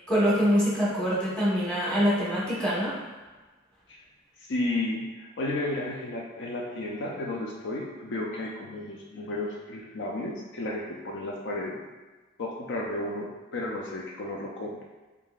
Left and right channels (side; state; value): both; normal; correlation 0.56